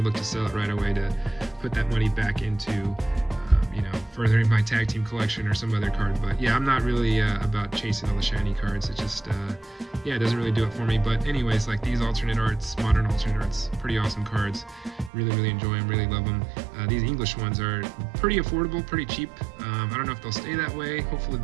look to sell it right away to put that money back into furthering my tag team collection or some other card. But yeah, I'm not really about chasing all the shiny cards. It just yeah, it doesn't really do it for me. But anyways, like these alternate arts, modern alternate arts, pretty awesome cards. Really enjoy them, really love them. These English ones are pretty affordable, pretty cheap. I don't know if they'll stay that way. Hopefully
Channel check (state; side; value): drops out; left; at 15.1 s